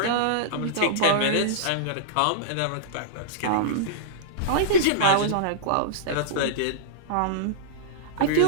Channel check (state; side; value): different; both; correlation -0.03